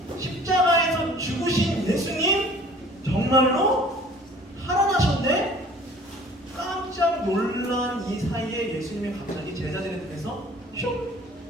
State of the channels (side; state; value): both; normal; correlation 0.50